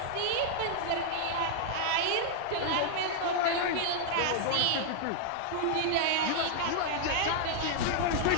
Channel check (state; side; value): different; both; correlation 0.00